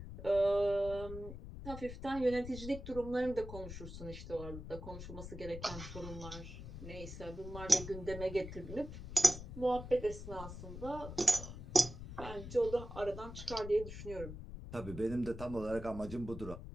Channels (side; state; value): left; noise; rumble, 10 dB below the sound